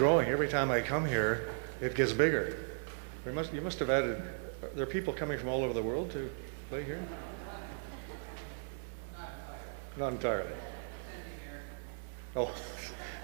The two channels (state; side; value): silent; left; digital silence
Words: Every time I come here, it gets bigger. You must have added, there are people coming from all over the world to play here? Not entirely. Oh,